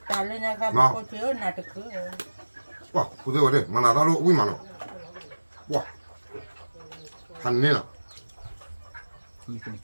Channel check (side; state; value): both; inverted; correlation -1.00